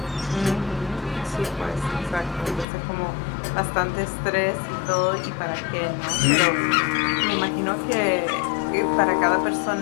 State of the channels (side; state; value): right; drops out; at 2.7 s